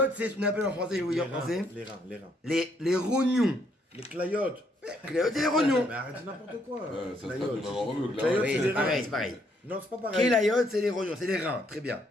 c'est ce qu'on appelle en français, je vais vous dire en français. Les reins. Les rognons. Les clayotes. Kelayot, c'est les rognons. Mais arrête n'importe quoi. ça se passe Clayotes. de maman remue, là. Clayotes, Oui, c'est c'est les pareil, reins. c'est pareil. Non, c'est pas pareil. Kelayot, c'est les rognons, c'est les reins. Très bien.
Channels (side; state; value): both; normal; correlation 0.71